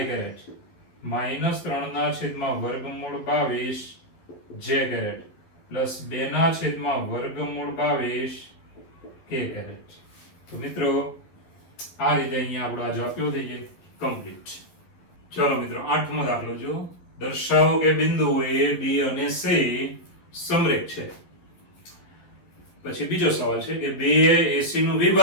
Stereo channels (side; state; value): right; late; 12 ms